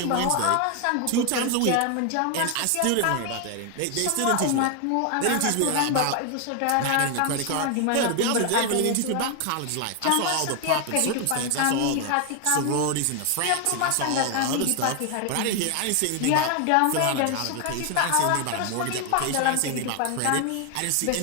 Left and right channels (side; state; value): both; different; correlation 0.01